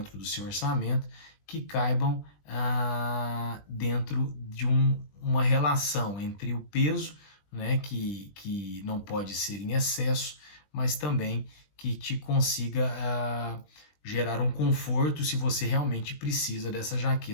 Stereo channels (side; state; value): right; late; 20 ms